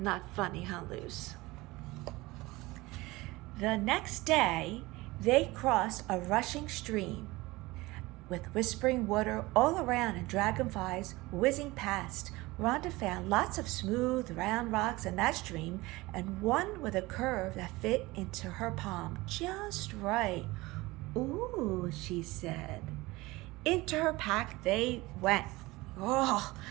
funny, huh, Luce? The next day, they crossed a rushing stream with whispering water all around and dragonflies whizzing past. Rhonda found lots of smooth, round rocks in that stream and one with a curve that fit into her palm just right. Ooh, she said. Into her pack they went. Oh,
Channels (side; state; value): left; quieter; 21.0 dB